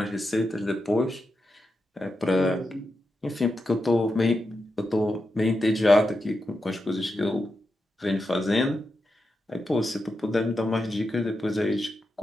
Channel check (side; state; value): both; normal; correlation 0.88